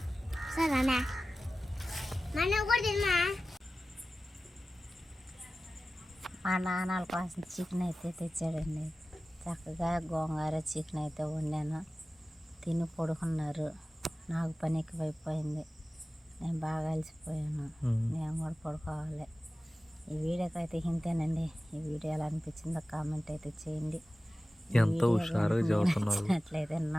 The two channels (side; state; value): both; normal; correlation 0.95